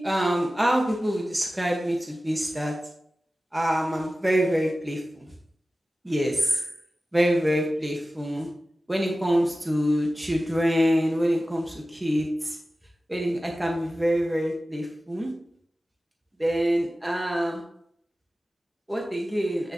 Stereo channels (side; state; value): both; normal; correlation 0.95